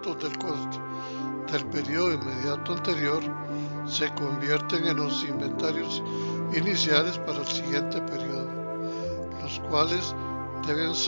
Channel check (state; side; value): inverted; both; correlation -1.00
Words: del costo del periodo inmediato anterior se convierten en los inventarios iniciales para el siguiente periodo, los cuales deben